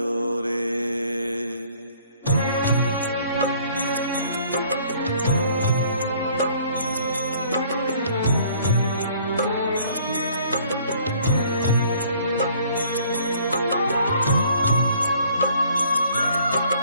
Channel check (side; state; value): both; inverted; correlation -0.58